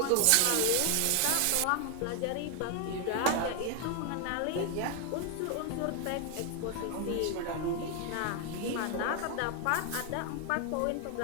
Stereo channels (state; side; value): different; both; correlation 0.00